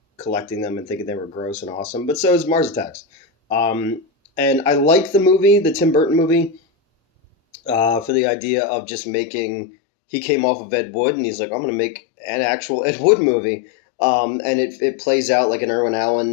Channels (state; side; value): drops out; right; at 8.1 s